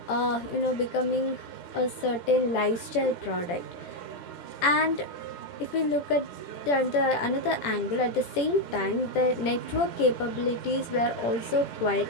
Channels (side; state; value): right; late; 17 ms